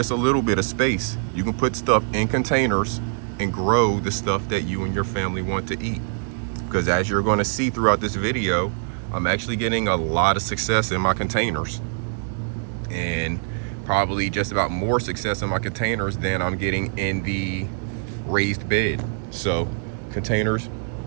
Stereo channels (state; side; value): silent; left; digital silence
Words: a little bit of space, you can put stuff in containers and grow the stuff that you and your family want to eat. Because as you're going to see throughout this video, I'm actually getting a lot of success in my containers, and probably just about more success in my containers than I'm getting in the raised bed. So containers